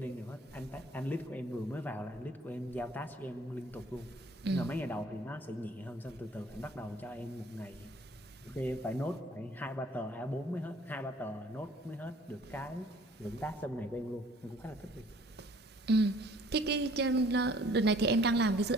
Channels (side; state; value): both; normal; correlation 0.56